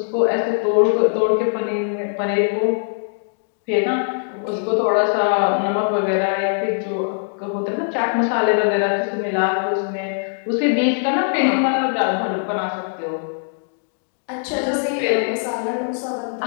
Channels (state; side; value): silent; right; digital silence